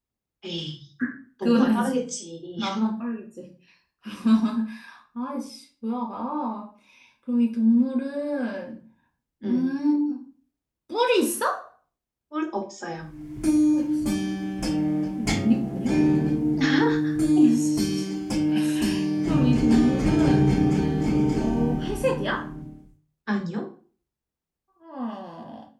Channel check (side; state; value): both; identical; correlation 1.00